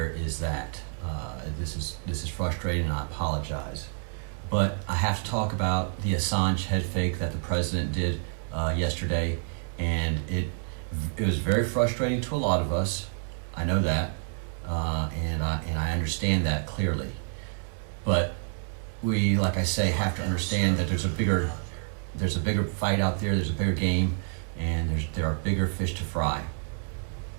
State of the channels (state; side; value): silent; left; 55 dB below the other